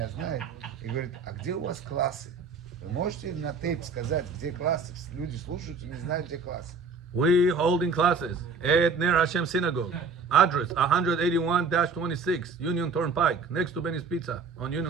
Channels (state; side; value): quieter; left; 4.4 dB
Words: знает, и говорит, а где у вас классы? Вы можете на тейп сказать, где классы? Люди слушают и не знают, где классы. We holding classes at Ner Hashem Synagogue. Address 181-26 Union Turnpike, next to Benny's Pizza on